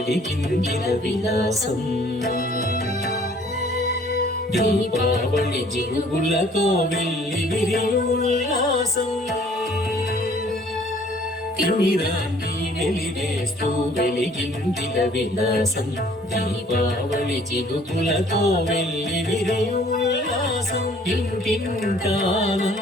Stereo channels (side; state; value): both; normal; correlation 0.56